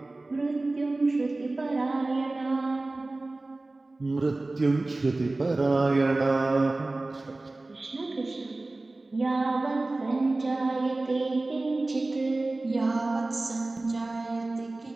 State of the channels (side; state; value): left; quieter; 3.0 dB